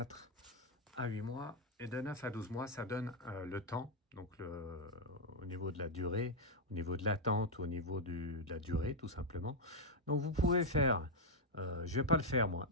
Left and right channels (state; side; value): normal; both; correlation 0.00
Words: à 8 mois et de 9 à 12 mois. Ça donne le temps. Donc, au niveau de la durée, au niveau de l'attente, au niveau de la durée, tout simplement. Donc, vous pouvez faire... je ne vais pas le faire, moi.